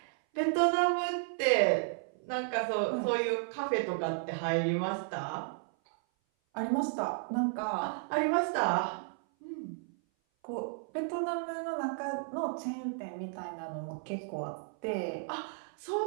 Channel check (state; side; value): silent; left; 56 dB below the other